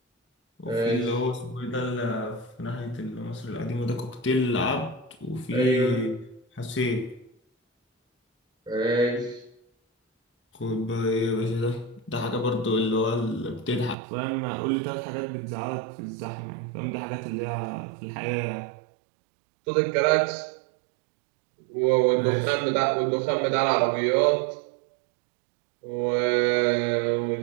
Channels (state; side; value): drops out; left; at 14.0 s